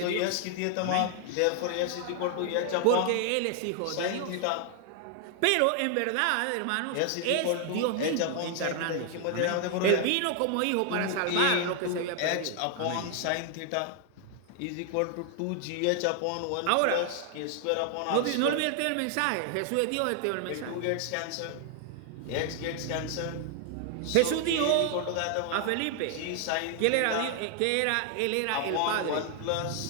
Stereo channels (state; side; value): different; both; correlation 0.00